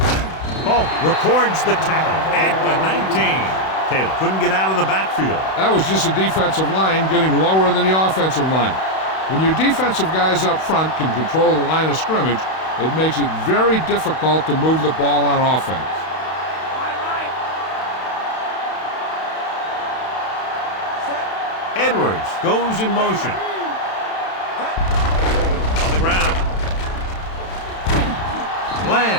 Polk records the tackle at the 19. Taylor couldn't get out of the backfield. That was just a defensive line getting lower than the offensive line. When your defensive guys up front can control the line of scrimmage, it makes it very difficult to move the ball on offense. Edwards goes in motion. On the ground.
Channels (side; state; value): right; late; 31 ms